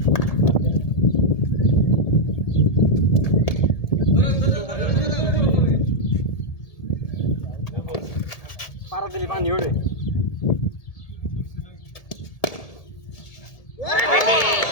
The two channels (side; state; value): right; late; 1.7 ms